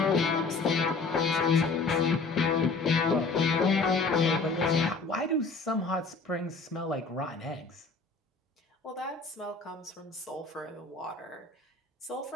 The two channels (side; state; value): right; quieter; 4.1 dB